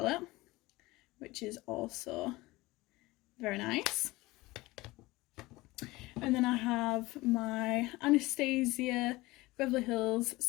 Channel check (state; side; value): quieter; right; 20.5 dB